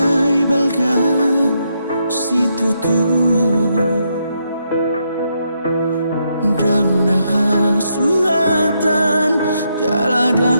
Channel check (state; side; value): inverted; both; correlation -0.79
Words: balga situ tu dang nah suhatan